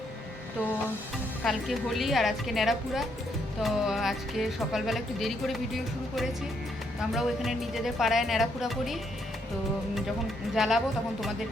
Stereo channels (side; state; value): both; normal; correlation 0.74